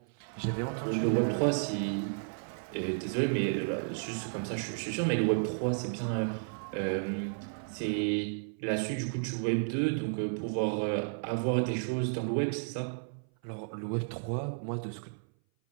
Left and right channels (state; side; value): silent; left; 56 dB below the other